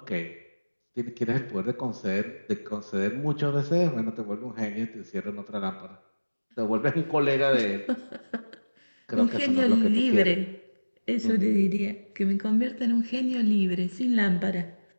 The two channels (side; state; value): both; inverted; correlation -1.00